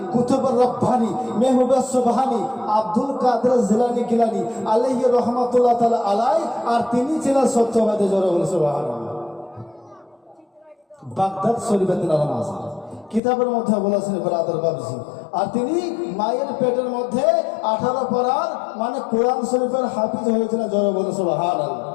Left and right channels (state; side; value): drops out; right; at 13.2 s